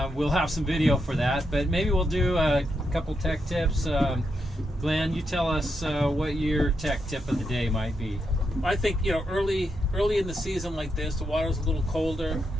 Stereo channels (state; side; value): normal; both; correlation 0.83